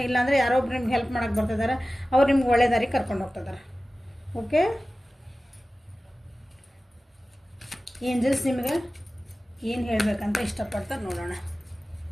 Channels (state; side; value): normal; both; correlation 0.96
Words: ಇಲ್ಲಾಂದರೆ ಯಾರೊಬ್ರು ನಿಮ್ಗೆ ಹೆಲ್ಪ್ ಮಾಡೋಕ್ಕೆ ಬರ್ತಿದ್ದಾರೆ. ಅವ್ರು ನಿಮ್ಗೆ ಒಳ್ಳೆ ದಾರಿ ಕರ್ಕೊಂಡು ಹೋಗ್ತಿದ್ದಾರೆ. ಓಕೆ, ಏಂಜಲ್ಸ್ ನಿಮಗೆ ಏನು ಹೇಳಬೇಕಂತ ಇಷ್ಟಪಡ್ತಾರೆ ನೋಡೋಣ.